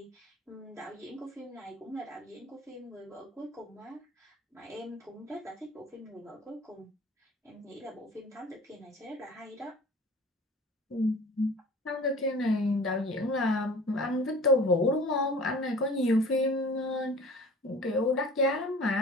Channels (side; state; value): both; normal; correlation 0.44